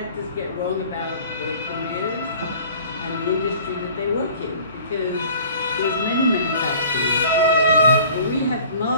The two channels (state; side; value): inverted; both; correlation -0.48